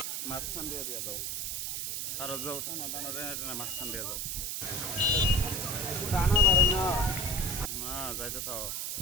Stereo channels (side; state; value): right; noise; hiss, 2 dB below the sound